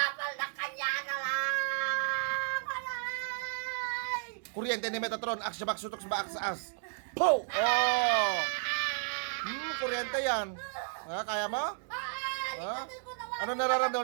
na kanya na lang! Alay! Kuryente ni Metatron. Aksya sutok sa baak sa as. Po! Oh! Kuryente yan. Ha? Kaya mo? Ha? Ikatin ko naman! Ano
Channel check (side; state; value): left; silent; digital silence